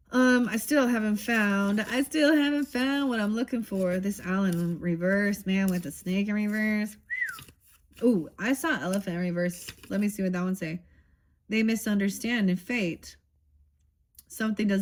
I still haven't found what I'm looking for. This owl in reverse, man, with the snake in reverse. Ooh, I saw elephant in reverse. Let me see what that one say. They misunderstand in fate. Someone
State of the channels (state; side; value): identical; both; correlation 1.00